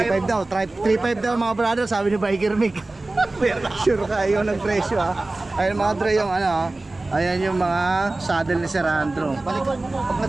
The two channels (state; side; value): quieter; left; 3.0 dB